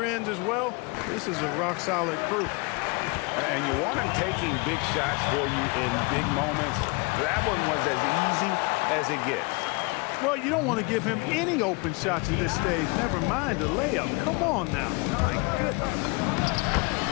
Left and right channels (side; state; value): right; quieter; 28.7 dB